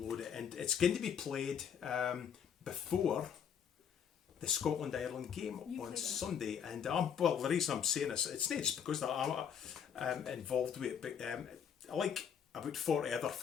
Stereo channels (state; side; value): quieter; right; 7.9 dB